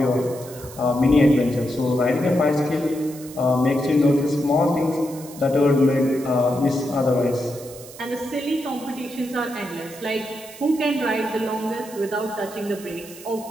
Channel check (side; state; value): right; noise; hiss, 17 dB below the sound